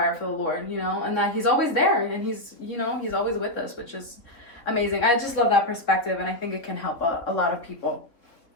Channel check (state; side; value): late; right; 3.8 ms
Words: for the Lord, you know, and that He's always there and He's, you know, He's always with us, which is amazing. I just love that perspective, and I think it can help a lot of people.